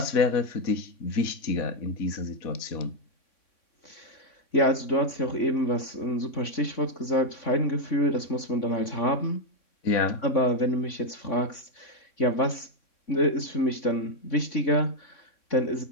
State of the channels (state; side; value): late; right; 3.6 ms